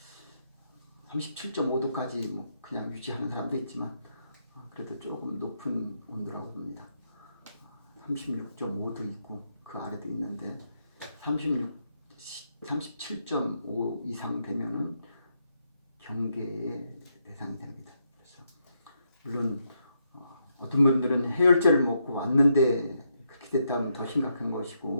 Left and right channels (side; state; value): both; inverted; correlation -0.79